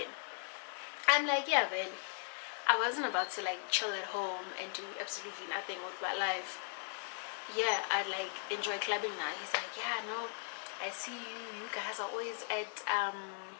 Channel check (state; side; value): silent; right; 52 dB below the other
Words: I'm like, yeah, but I wasn't about to chill at home and do absolutely nothing with my life. Yeah, I enjoy clubbing now. He's like, yeah, no, I see you guys are always at